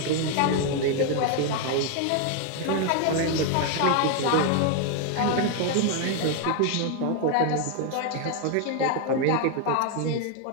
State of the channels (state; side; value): different; both; correlation 0.00